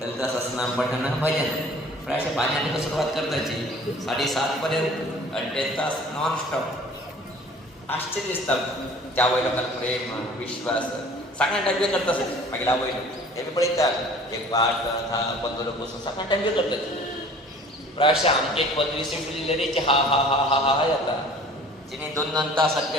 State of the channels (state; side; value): normal; both; correlation 0.48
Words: ललिता सहस्रनाम पठण भजन प्रायशः 5 सुरुवात करताची 7:30 पर्यंत 1.5 तास नॉन स्टॉप. आश्चर्य दिसता त्या आवय लोकांक प्रेम विश्वास सगळ्या टायम करता असेल मागीर आवय हे बी पळयतात एक 8 10 15 लोक बसून सगळ्या टायम करतात. प्रायशः आमचे 15 सीट दिलेले हा हा हा हा हा हा जाता तिने 2 तास